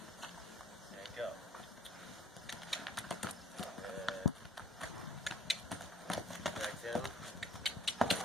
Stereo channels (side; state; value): both; normal; correlation 0.54